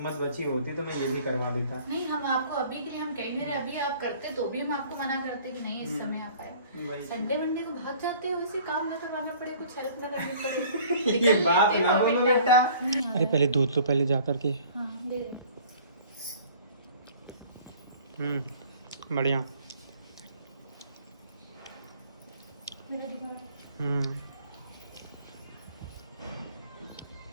बची होती तो मैं ये भी करवा देता। नहीं, हम आपको अभी के लिए हम कह नहीं रहे, अभी आप करते तो भी हम आपको मना करते कि नहीं इस समय आप आए। वही। संडे मंडे को भाग जाते हो, वैसे काम ना करवाना पड़े, कुछ हेल्प ना करनी पड़े। ये बात ना बोलो बेटा। नहीं, अरे पहले दूध लो, पहले जा करके। हाँ दे दे। बढ़िया। मेरा दिमाग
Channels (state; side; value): inverted; both; correlation -0.51